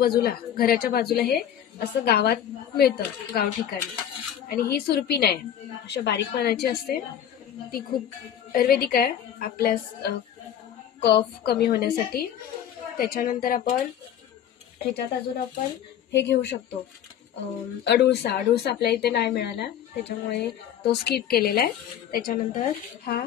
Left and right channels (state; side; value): quieter; right; 9.9 dB